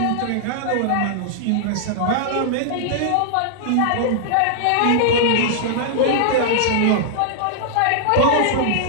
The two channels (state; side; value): different; both; correlation -0.01